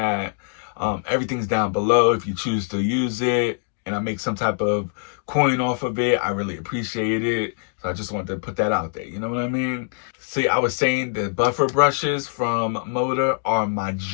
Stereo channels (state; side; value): silent; right; digital silence